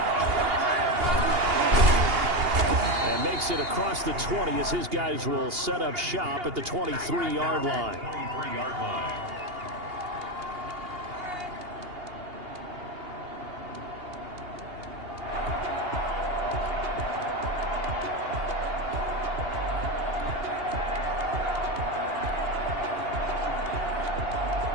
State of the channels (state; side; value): late; left; 2.8 ms